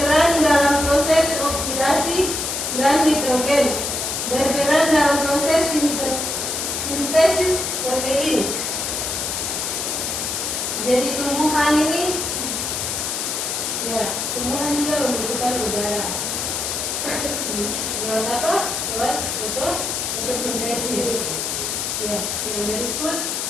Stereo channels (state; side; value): noise; left; hiss, 2 dB below the sound